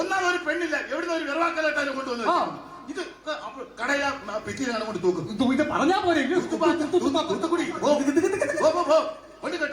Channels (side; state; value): both; identical; correlation 1.00